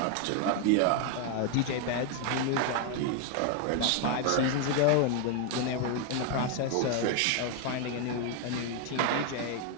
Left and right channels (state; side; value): different; both; correlation 0.01